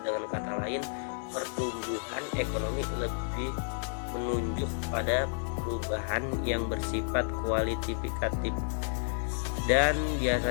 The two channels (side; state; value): right; silent; digital silence